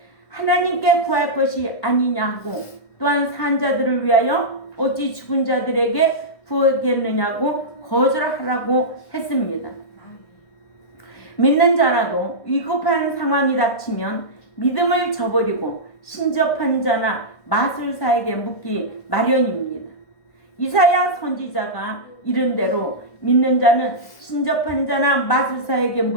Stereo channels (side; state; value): right; late; 1.5 ms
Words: 하나님께 구할 것이 아니냐 하고 또한 산 자들을 위하여 어찌 죽은 자들에게 구하겠느냐고 거절하라고 했습니다. 믿는 자라도 위급한 상황이 닥치면 믿음을 저버리고 신접한 자나 마술사에게 묻기 마련입니다. 이사야 선지자가 이른 대로 믿는 자는 신접한 자나 마술사에게